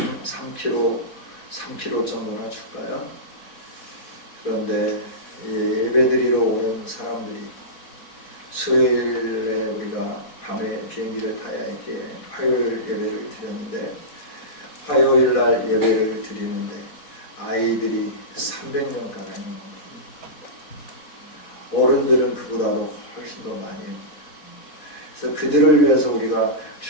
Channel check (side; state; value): right; late; 4.1 ms